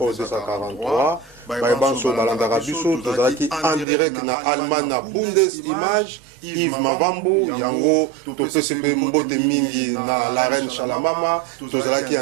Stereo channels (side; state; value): left; drops out; at 3.9 s